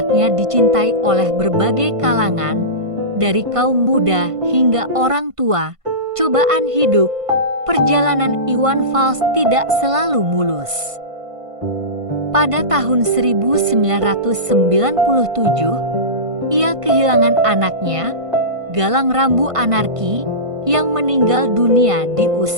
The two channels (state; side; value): late; left; 1.5 ms